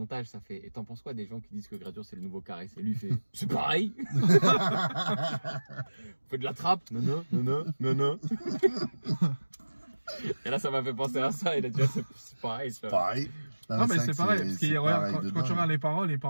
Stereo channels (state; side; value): inverted; both; correlation -1.00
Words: ça fait et t'en penses quoi des gens qui disent que Gradure c'est le nouveau Caris? Et lui il fait c'est pareil. On fait de la trappe. Non. Et là, ça m'a fait penser à ça. Il a dit c'est pareil. C'est Pareil. Non, mais vrai c'est que pareil. Parce que regarde, pareil de quand tu dingue. regardes les paroles, il